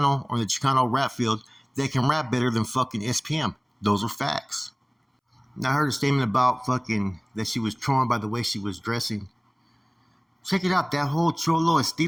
or the Chicano rap field that can rap better than fucking SPM. Those are facts. Now, I heard a statement about that she was trolling by the way she was dressing. Check it out, that whole cholo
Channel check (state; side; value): identical; both; correlation 1.00